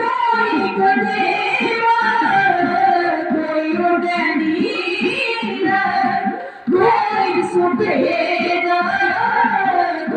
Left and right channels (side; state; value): both; identical; correlation 1.00